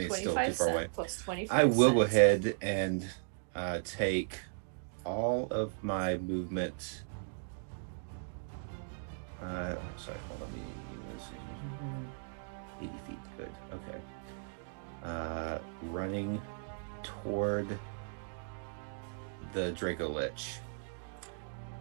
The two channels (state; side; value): silent; left; digital silence